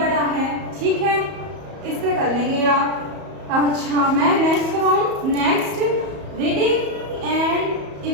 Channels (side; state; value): left; late; 34 ms